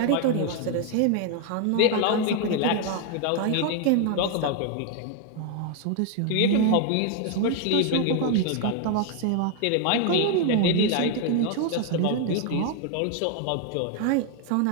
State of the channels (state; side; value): different; both; correlation 0.00